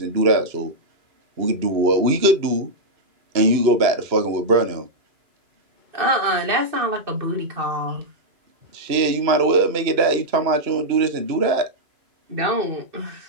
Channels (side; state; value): left; late; 2.9 ms